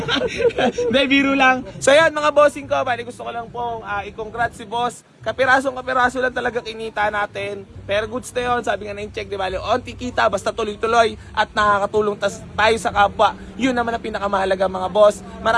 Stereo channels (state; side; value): identical; both; correlation 1.00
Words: Hindi, biro lang. So yan mga bossing ko, bali gusto ko lang pong i-congrats si boss. Kapiraso lang talaga kinita natin. Pero goods na yun, sabi nga na yung check, di bali, onti kita, basta tuloy-tuloy at nakakatulong tayo sa kapwa. Yun naman ang pinakamahalaga mga boss.